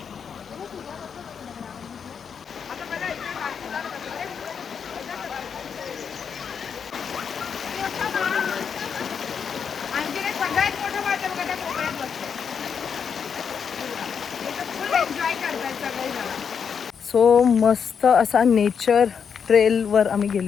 सो मस्त असा नेचर ट्रेलवर आम्ही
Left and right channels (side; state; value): right; quieter; 6.9 dB